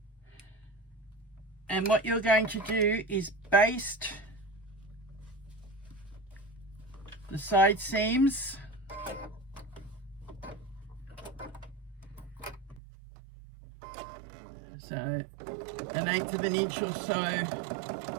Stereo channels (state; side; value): drops out; left; at 12.8 s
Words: And what you're going to do is baste the side seams so 1/8 of an inch or so